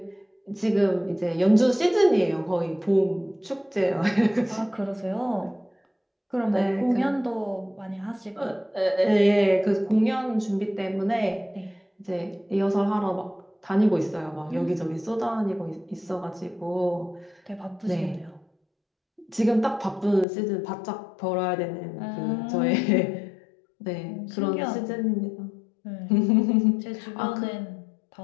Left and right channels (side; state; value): right; drops out; at 20.2 s